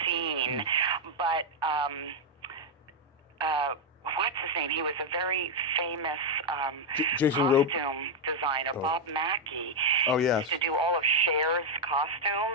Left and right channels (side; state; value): both; normal; correlation 0.01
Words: scene, but what's his name? He was a very famous costume designer, Bob Mackey. Oh, yes. He used to do all of Cher's